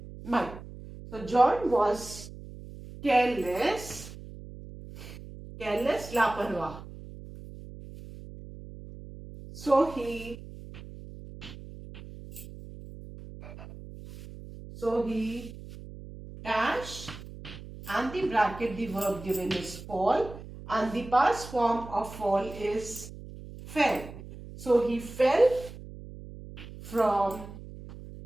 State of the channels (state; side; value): noise; right; hum, 14 dB below the sound